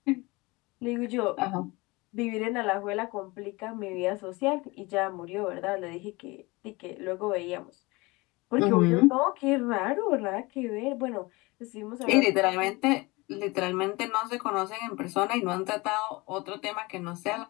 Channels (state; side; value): quieter; right; 23.8 dB